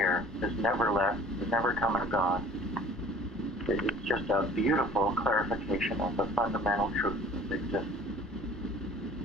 has never left, has never come and gone. It's just a beautiful clarification of the fundamental truth that exists.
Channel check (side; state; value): both; normal; correlation 0.49